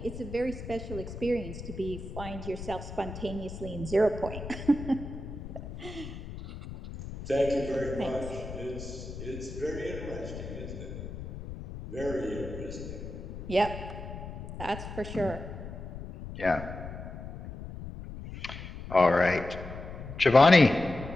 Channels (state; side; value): noise; left; rumble, 10 dB below the sound